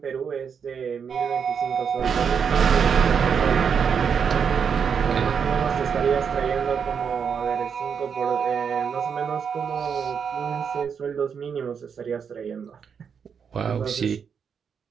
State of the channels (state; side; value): quieter; left; 6.8 dB